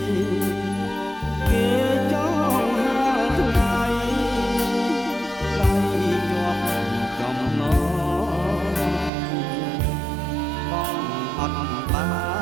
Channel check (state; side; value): drops out; left; at 9.1 s